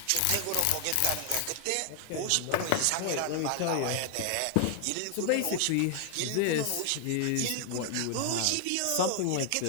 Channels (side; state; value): both; different; correlation 0.00